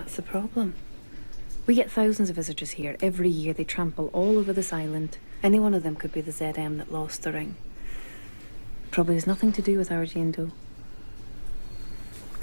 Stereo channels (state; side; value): inverted; both; correlation -1.00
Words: the problem. We get thousands of visitors here. Every year they trample all over this island. Any one of them could be the ZM that lost the ring. Probably has nothing to do with our Jane Doe.